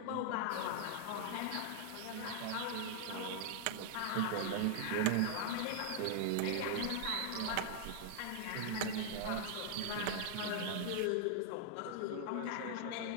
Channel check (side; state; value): both; different; correlation 0.00